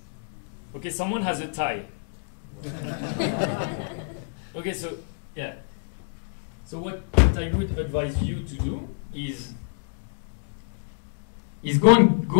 Okay, someone has a tie. Okay, so yeah. So what I would advise you to do is go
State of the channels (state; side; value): silent; right; 60 dB below the other